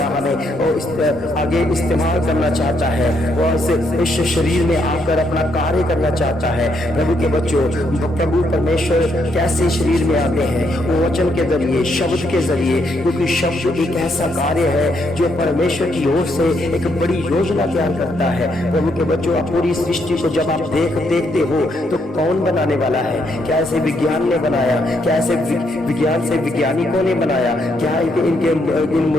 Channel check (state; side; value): normal; both; correlation 0.75